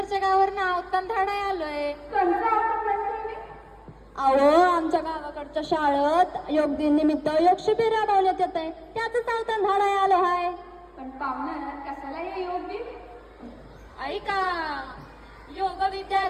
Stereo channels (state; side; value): identical; both; correlation 1.00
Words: गावावर अवतांधाडा आलोय. कोणचं आवडत नाही तुम्ही? अहो आमच्या गावाकडच्या शाळेत योग दिन निमित्त योग शिबिर राबवण्यात येत आहे, त्याच अवतांधाडा आलो आहे. पण पाहुणं कशाला हे योग दिन? ऐका, योग विद्या